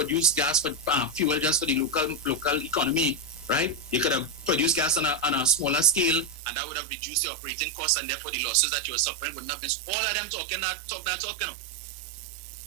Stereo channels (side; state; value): left; drops out; at 6.4 s